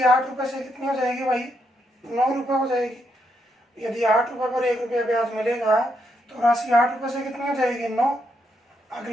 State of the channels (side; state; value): both; normal; correlation 0.79